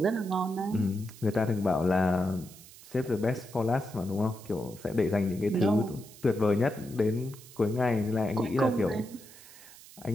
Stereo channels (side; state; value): right; noise; hiss, 20 dB below the sound